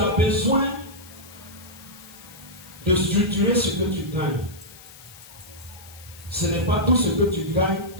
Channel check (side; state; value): left; noise; hiss, 20 dB below the sound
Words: besoin de structurer ce que tu gagnes. Ce n'est pas tout ce que tu gagnes